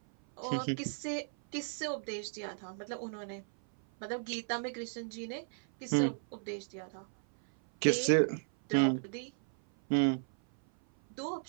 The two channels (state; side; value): silent; left; 55 dB below the other